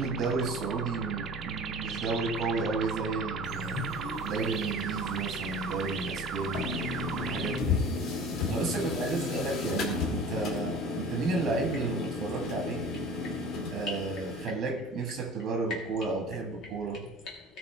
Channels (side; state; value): both; normal; correlation 0.41